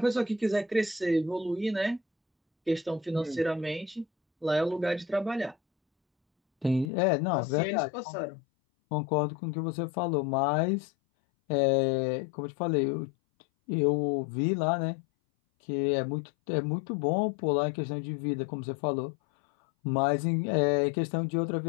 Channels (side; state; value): right; drops out; at 6.9 s